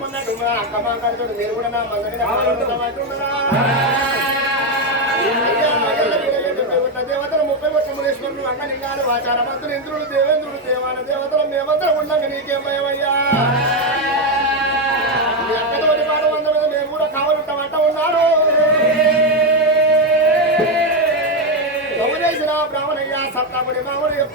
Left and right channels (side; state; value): both; normal; correlation 0.07